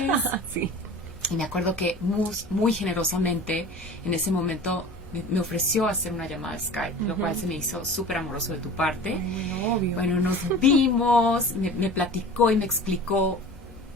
Sí. Y me acuerdo que Mus muy generosamente en ese momento me ofreció hacer una llamada de Skype, lo cual se me hizo súper amoroso de tu parte. Obvio. Bueno, nos vimos, me platicó y me explicó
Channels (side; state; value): both; normal; correlation 0.39